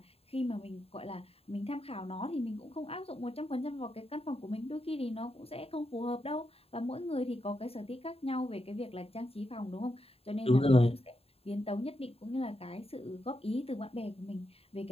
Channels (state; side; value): late; right; 0.29 ms